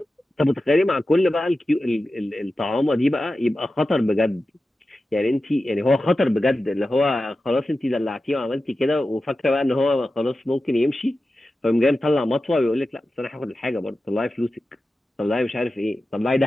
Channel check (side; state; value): both; normal; correlation 0.93